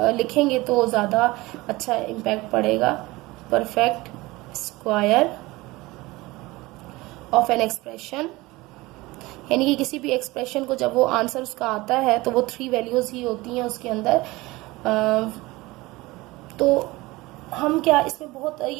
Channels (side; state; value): left; quieter; 20.9 dB